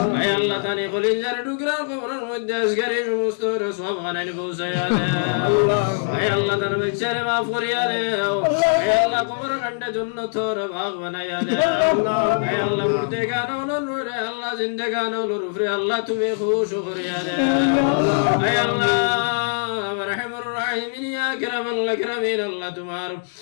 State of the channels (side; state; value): right; silent; digital silence